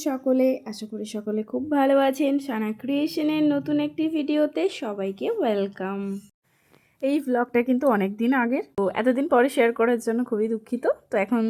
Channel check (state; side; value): identical; both; correlation 1.00